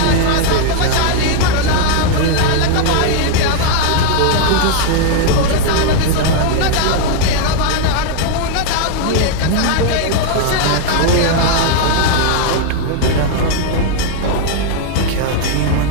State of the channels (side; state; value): both; different; correlation 0.00